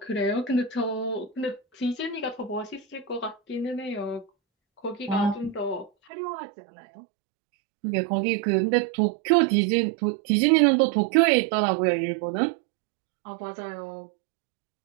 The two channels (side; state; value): left; drops out; at 5.9 s